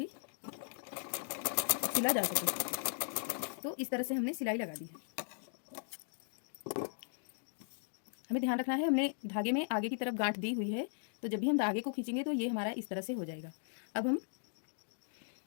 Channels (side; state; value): right; silent; digital silence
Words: सिला जा सके। तो इस तरह से हमने सिलाई लगा दी है। हमें ध्यान रखना है, हमने धागे में आगे की तरफ गांठ दी हुई है, तो जब भी हम धागे को खींचेंगे तो ये हमारा इस तरह से हो जाएगा। अब हम